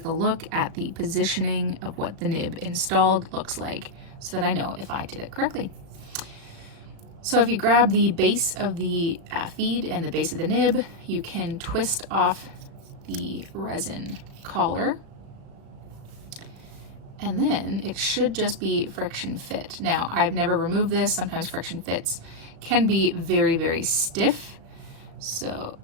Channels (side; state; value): left; late; 36 ms